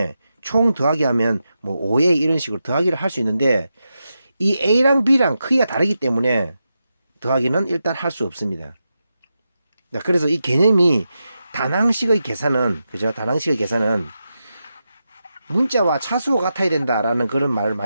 총 더하기 하면 뭐 5A 이런 식으로 더하기를 할 수 있는데, 이 A랑 B랑 크기가 다르기 때문에 더하기는 일단 할 수 없습니다. 그래서 이 개념이 단항식의 계산은, 그죠? 단항식의 계산은 문자와 차수가 같아야 된다라는 그런 말을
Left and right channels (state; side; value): inverted; both; correlation -0.88